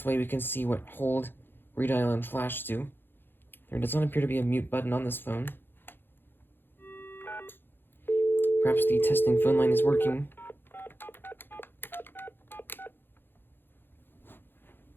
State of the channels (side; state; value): right; late; 0.10 ms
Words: way we can see what hold, redial, and flash do. There does not appear to be a mute button on this phone. Perhaps the testing phone line is working.